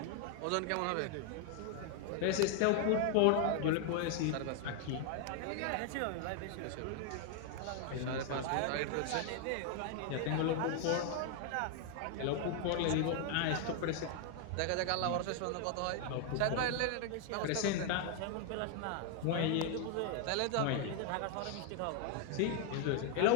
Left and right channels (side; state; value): both; different; correlation 0.00